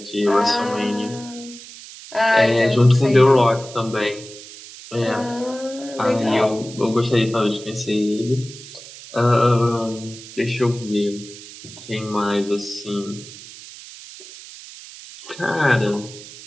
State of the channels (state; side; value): noise; right; hiss, 16 dB below the sound